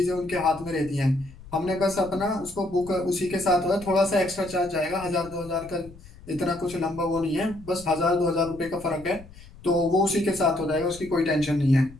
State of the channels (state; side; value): noise; left; rumble, 19 dB below the sound